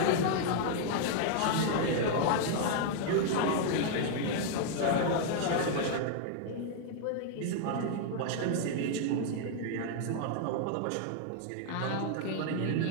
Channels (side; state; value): both; different; correlation 0.00